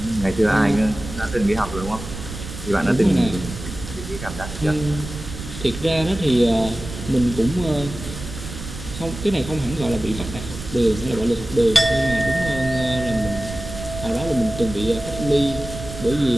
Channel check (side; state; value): right; noise; rumble, 10 dB below the sound